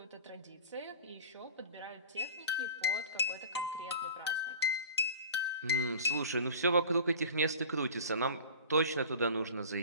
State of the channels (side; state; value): both; inverted; correlation -0.38